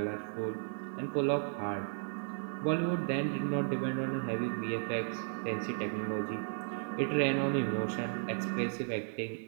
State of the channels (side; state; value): left; silent; digital silence